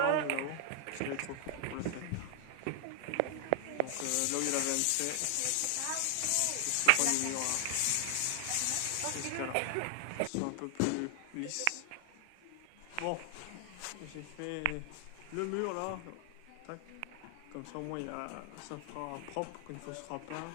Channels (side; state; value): both; different; correlation 0.00